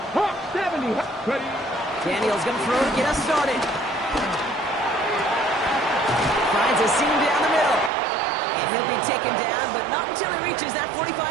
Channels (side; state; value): left; drops out; at 7.9 s